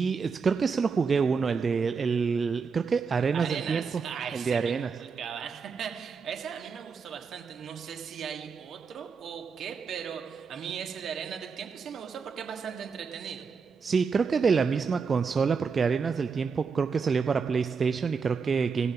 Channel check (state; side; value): quieter; left; 5.5 dB